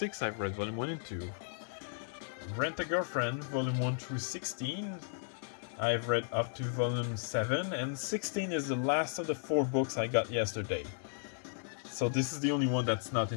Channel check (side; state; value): right; silent; 54 dB below the other